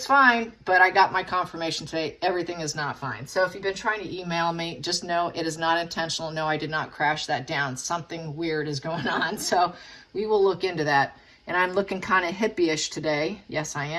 fine, but I got my confirmation today. Everything is not fine. So if you've been trying to email me, just know it is not intentional. No, I did not crash that down. Something weird is going on. So we will look into that. And I'm looking kind of hippie-ish today. Yes, I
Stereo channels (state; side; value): identical; both; correlation 1.00